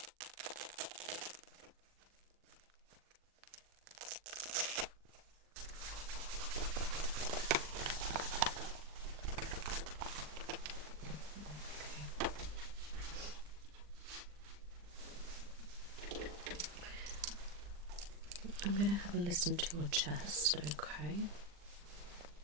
I'm going to have a listen to your chest, okay?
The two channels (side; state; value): left; late; 40 ms